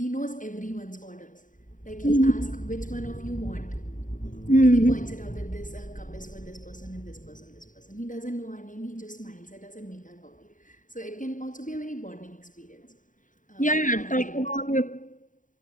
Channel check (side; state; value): right; late; 0.38 ms